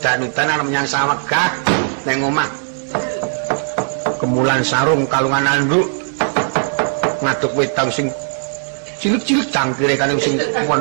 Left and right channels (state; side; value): silent; left; digital silence